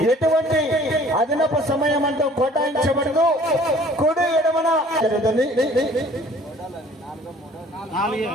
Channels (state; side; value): normal; both; correlation 0.53